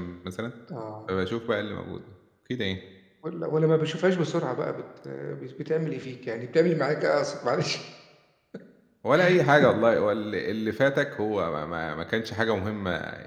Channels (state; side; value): identical; both; correlation 1.00